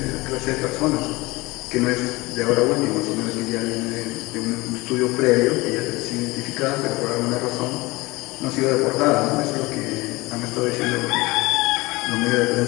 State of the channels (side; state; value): right; quieter; 22.2 dB